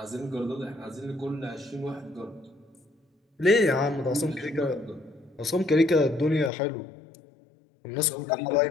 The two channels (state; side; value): drops out; right; at 6.5 s